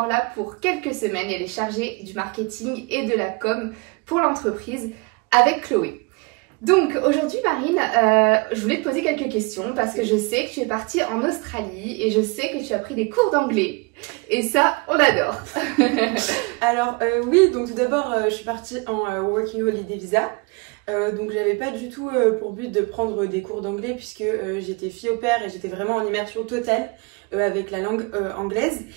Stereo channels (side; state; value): left; quieter; 28.6 dB